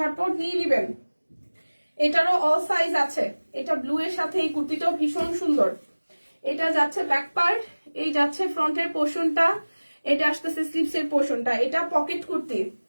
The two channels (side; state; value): both; inverted; correlation -1.00